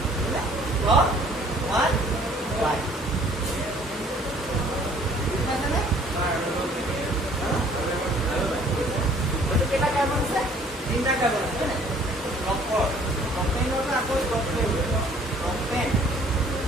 প্ৰপ 1 ৱাইন বুজিছানে কেইটা কাৰ্বন আছে 3টা কাৰ্বন আছে হয়নে প্ৰপেনৰ পৰা আকৌ প্ৰপেন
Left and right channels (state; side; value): normal; both; correlation 0.57